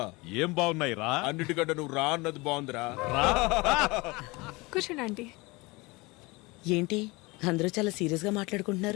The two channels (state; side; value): quieter; right; 24.3 dB